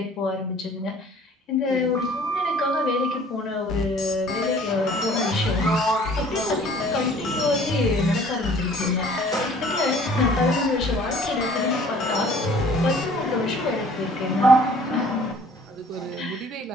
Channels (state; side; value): normal; both; correlation 0.53